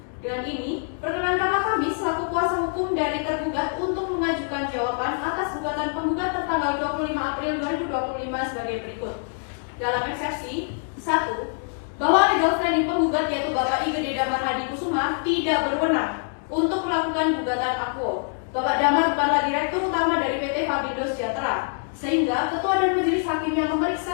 Dengan ini, perkenankanlah kami selaku kuasa hukum dari tergugat untuk mengajukan jawaban atas gugatan penggugat tertanggal 25 April 2025 sebagai berikut. Dalam eksepsi 1, bahwa legal standing penggugat yaitu Bapak I Gede Damar Hadi Kusuma tidak berwenang untuk melakukan gugatan akuo. Bapak Damar bukanlah direktur utama dari PT Fabindo Sejahtera, sehingga ketua dan majelis hakim yang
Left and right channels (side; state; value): right; silent; 62 dB below the other